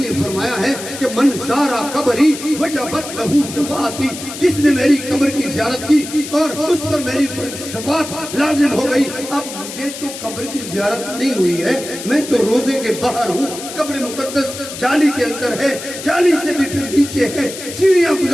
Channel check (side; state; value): left; noise; hiss, 10 dB below the sound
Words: فرمایا ہے کہ من زارا قبری وجبت لہو شفاعتی, جس نے میری قبر کی زیارت کی اور اس پر میری شفاعت لازم ہو گئی. اب مجھے تو قبر کی زیارت نہیں ہوئی ہے, میں تو روزے کے باہر ہوں. قبر مقدس جالی کے اندر ہے, جالی سے بھی پھر نیچے ہے, سیڑھیاں